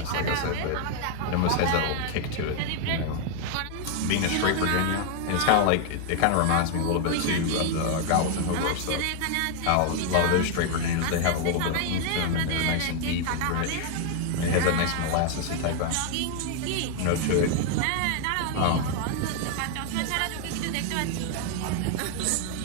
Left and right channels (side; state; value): both; different; correlation 0.00